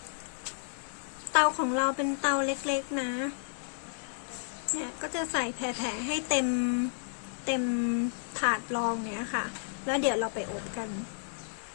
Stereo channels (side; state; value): right; silent; digital silence